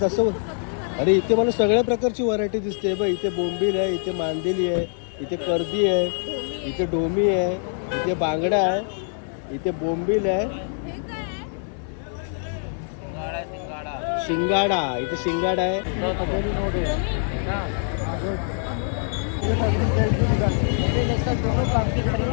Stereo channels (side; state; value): right; silent; 62 dB below the other